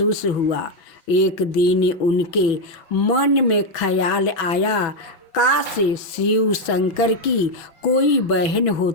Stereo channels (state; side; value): late; right; 6.0 ms